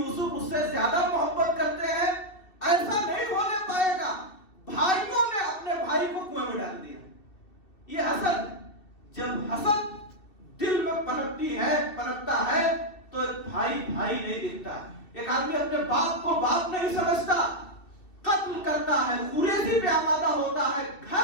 اس سے زیادہ محبت کرتے ہیں، ایسا نہیں ہونے پائے گا۔ بھائیوں نے اپنے بھائی کو کنویں میں ڈال دیا۔ یہ حسد، جب حسد دل میں پنپتا ہے تو ایک بھائی نہیں دکھتا۔ ایک آدمی اپنے باپ کو باپ نہیں سمجھتا، قتل کرتا ہے، خوریزی پہ آمادہ ہوتا ہے،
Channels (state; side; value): late; right; 2.7 ms